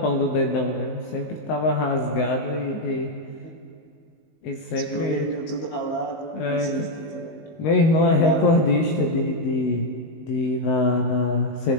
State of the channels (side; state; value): right; late; 19 ms